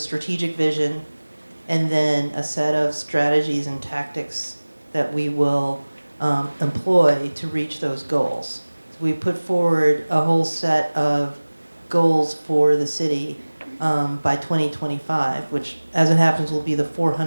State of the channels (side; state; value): both; inverted; correlation -1.00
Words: vision and then a set of strategies and tactics that we will employ to reach those goals. So we put forward a whole set of goals for the city by 2025, which, as it happens, will be the